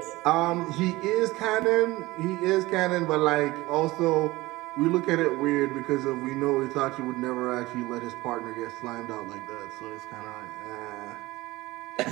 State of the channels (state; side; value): quieter; left; 19.6 dB